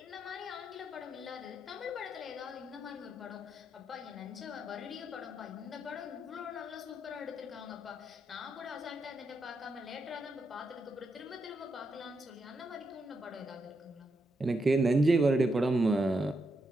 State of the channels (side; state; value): both; normal; correlation 0.82